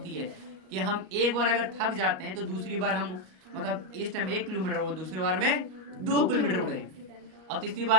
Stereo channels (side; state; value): left; late; 38 ms